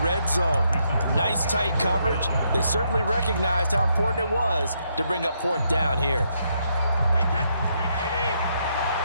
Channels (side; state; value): both; inverted; correlation -0.77